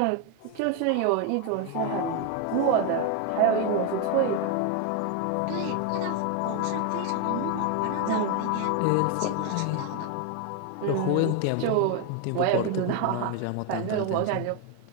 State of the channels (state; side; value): different; both; correlation 0.01